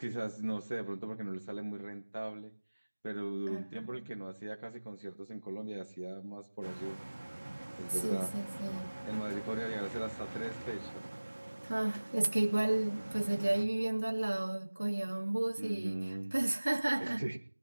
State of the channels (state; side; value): inverted; both; correlation -1.00